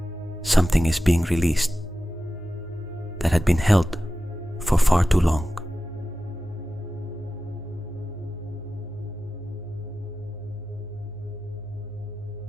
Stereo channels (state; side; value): normal; both; correlation 0.94